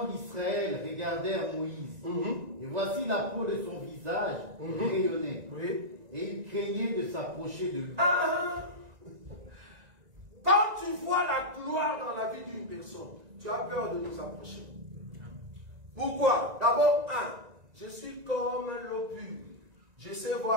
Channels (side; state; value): left; late; 1.9 ms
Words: d'Israël regardèrent Moïse. Et voici la peau de son visage rayonnait. Oui. Et il craignait de s'approcher de lui. Quand tu vois la gloire dans la vie d'une personne, tu as peur de nous approcher. Pourquoi? D'abord, je suis comme l'eau pure. Je sais